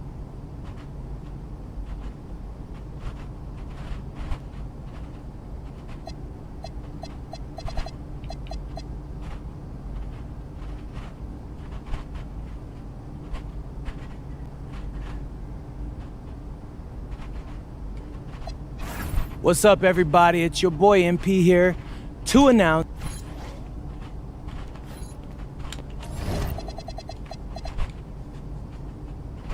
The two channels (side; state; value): both; identical; correlation 1.00